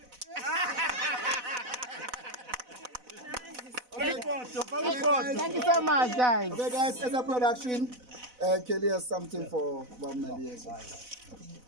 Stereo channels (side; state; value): left; late; 4.0 ms